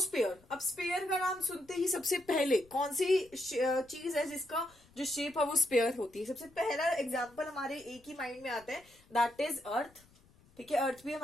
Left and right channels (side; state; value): left; noise; rumble, 28 dB below the sound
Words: अब स्पेयर का नाम सुनते ही सबसे पहले कौन सी चीज है जिसका जो शेप है वो स्पेयर होती है? सबसे पहला एग्जांपल हमारे एक ही माइंड में आता है, दैट इज अर्थ, ठीक है। अर्थ भी